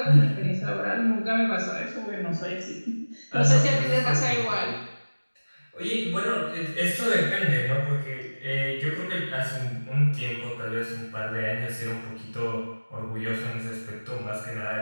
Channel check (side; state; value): both; inverted; correlation -1.00